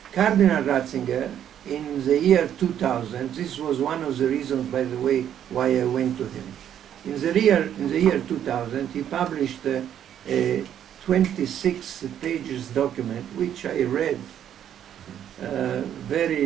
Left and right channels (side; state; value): left; quieter; 10.0 dB